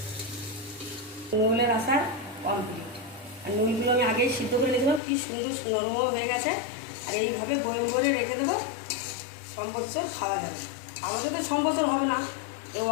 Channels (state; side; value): drops out; right; at 5.0 s